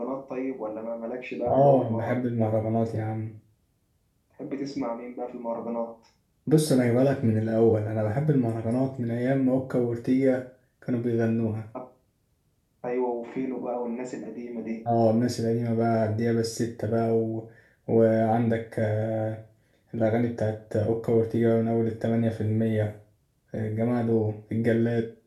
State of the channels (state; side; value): identical; both; correlation 1.00